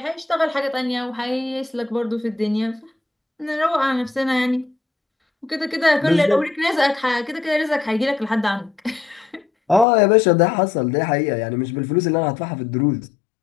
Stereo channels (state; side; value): drops out; right; at 9.9 s